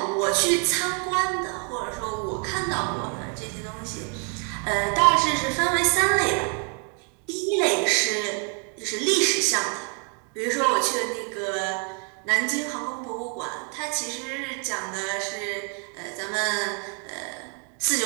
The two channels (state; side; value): quieter; left; 39.4 dB